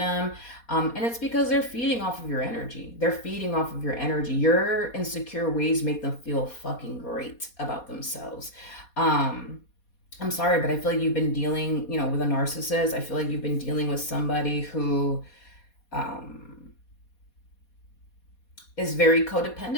And it's because they're feeding off of your energy. They're feeding off of your energy. Your insecure ways make them feel fucking great about themselves. I'm sorry, but I feel like you've been dealing, with a narcissist. I feel like you've been dealing with somebody who, um, is very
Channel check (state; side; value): late; right; 4.2 ms